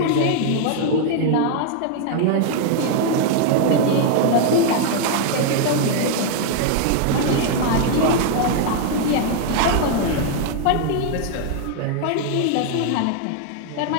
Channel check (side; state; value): both; different; correlation 0.00